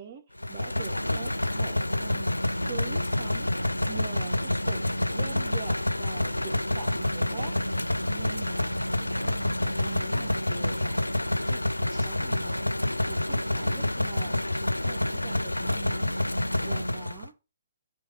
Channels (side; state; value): both; inverted; correlation -0.96